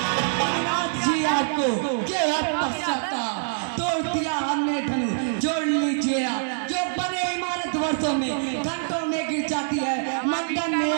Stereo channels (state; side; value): silent; left; digital silence